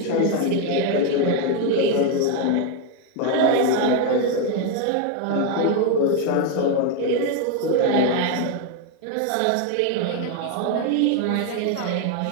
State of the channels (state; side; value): different; both; correlation 0.01